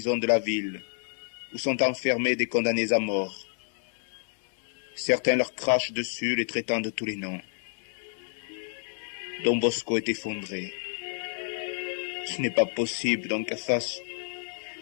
de la ville, où sont enfermés des condamnés à mort. Certains leur crachent dessus, les traitant de tous les noms. Don Bosco est effondré. Ce n'est pas possible, Don Cafasso.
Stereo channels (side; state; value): right; silent; 59 dB below the other